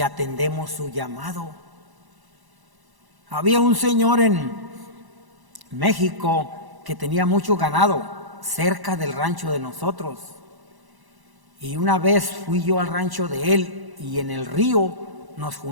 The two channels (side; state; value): left; late; 1.1 ms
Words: atendemos su llamado. Había un señor en México que tenía mucho ganado cerca del rancho de nosotros. Y una vez fui yo al rancho de él y en el río nos